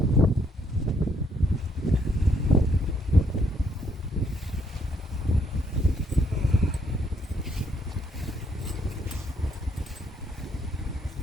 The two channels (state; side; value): normal; both; correlation 0.71